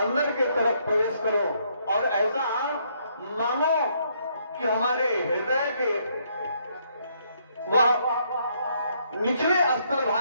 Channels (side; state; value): both; inverted; correlation -0.71